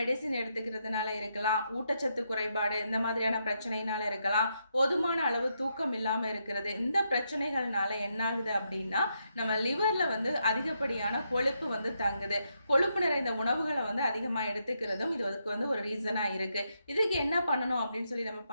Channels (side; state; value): both; inverted; correlation -0.80